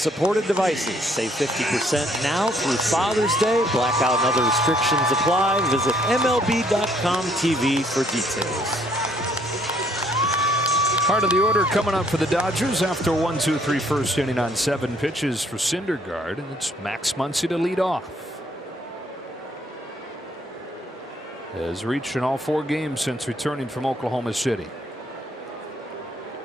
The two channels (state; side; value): normal; both; correlation 0.65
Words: devices. Save 50% now through Father's Day. Blackout and other restrictions apply. Visit MLB.com TV for details. Part of the order coming up for the Dodgers after 1-2-3 first inning on 7 pitches for Syndergaard, and it's Max Muncy to lead off. Has reached in all 4 games since returning from Oklahoma City.